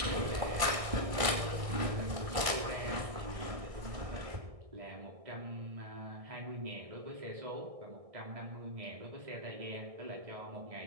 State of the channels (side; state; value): left; late; 1.6 ms